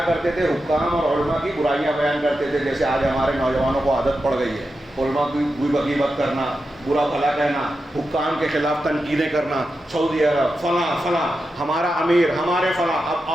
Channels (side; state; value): both; normal; correlation 0.89